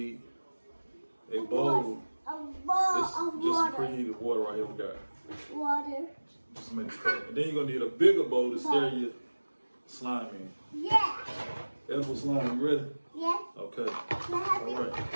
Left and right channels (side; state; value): both; inverted; correlation -1.00